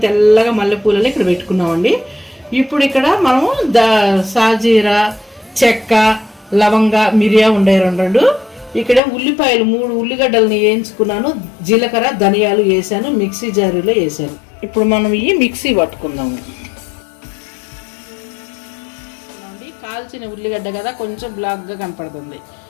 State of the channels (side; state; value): right; drops out; at 9.0 s